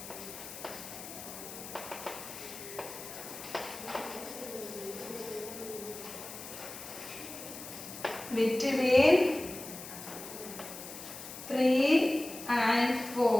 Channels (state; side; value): noise; left; hiss, 11 dB below the sound